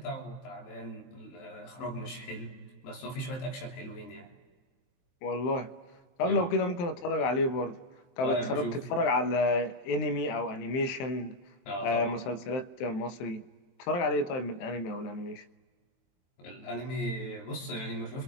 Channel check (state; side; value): late; right; 23 ms